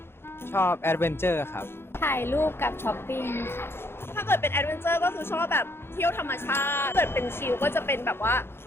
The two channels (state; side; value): late; right; 0.11 ms